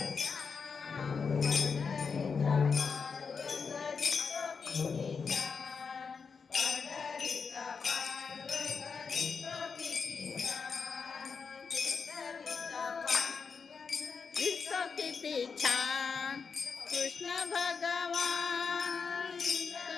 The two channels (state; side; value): quieter; right; 5.5 dB